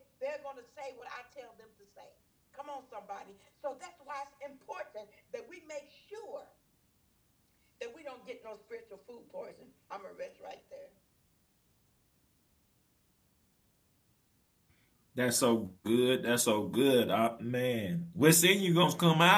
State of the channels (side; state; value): both; identical; correlation 1.00